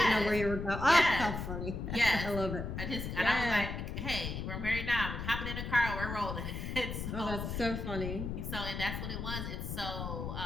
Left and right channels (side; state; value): left; noise; rumble, 5 dB below the sound